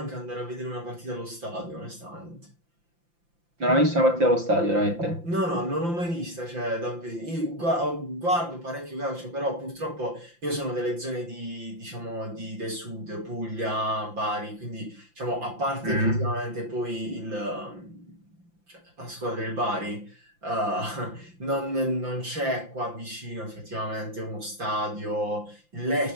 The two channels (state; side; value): late; left; 5.8 ms